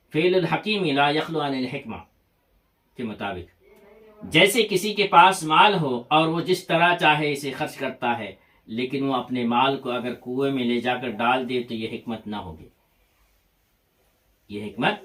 فعل الحکیم لا یخلو عن الحکمہ کے مطابق۔ جیسے کسی کے پاس مال ہو اور وہ جس طرح چاہے اسے خرچ کرتا ہے، لیکن وہ اپنے مال کو اگر کنویں میں لے جا کر ڈال دے تو یہ حکمت نہ ہوگی، یہ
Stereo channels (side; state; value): both; identical; correlation 1.00